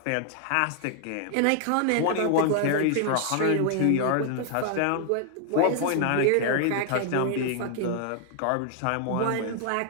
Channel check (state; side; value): different; both; correlation 0.00